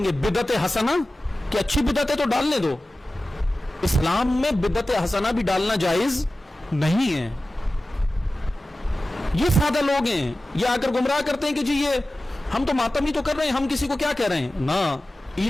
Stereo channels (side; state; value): both; normal; correlation 0.96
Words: बिदत हसना, कि अच्छी बिदतें तो डालने दो। इस्लाम में बिदत हसना भी डालना जायज नहीं है। ये सादा लोग हैं, ये आकर गुमराह करते हैं कि जी ये हम तो मातम ही तो कर रहे हैं, हम किसी को क्या कह रहे हैं ना।